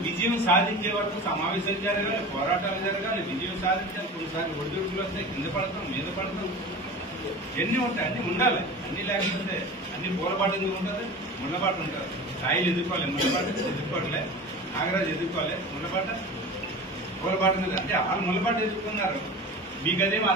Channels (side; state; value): both; normal; correlation 0.34